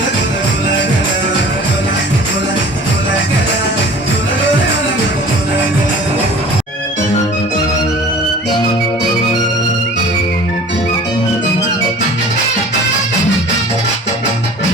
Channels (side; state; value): both; normal; correlation 0.45